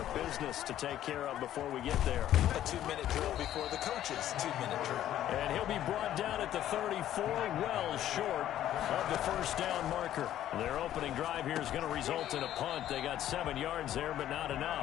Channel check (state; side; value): quieter; right; 12.1 dB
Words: business to take care of before we get there. A 2-minute drill before the coaches' 2-minute drill. And he'll be brought down at the 34, well short of the 1st down marker. Their opening drive here is going to result in a punt. They got 7 yards there, but not